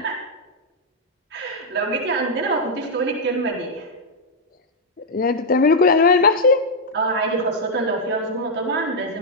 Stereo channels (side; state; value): both; normal; correlation -0.04